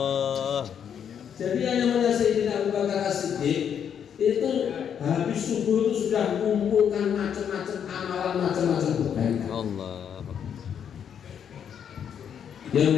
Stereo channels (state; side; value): quieter; right; 8.3 dB